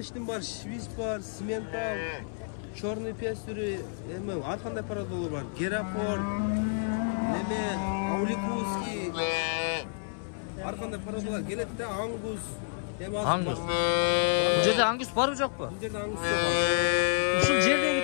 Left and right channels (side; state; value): right; silent; 58 dB below the other